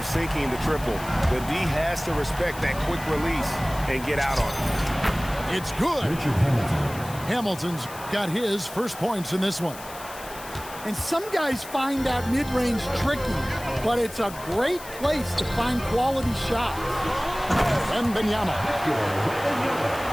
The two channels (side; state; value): left; noise; hiss, 15 dB below the sound